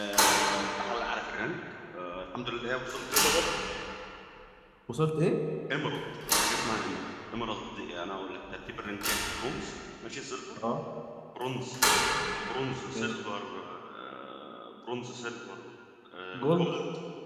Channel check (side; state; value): both; identical; correlation 1.00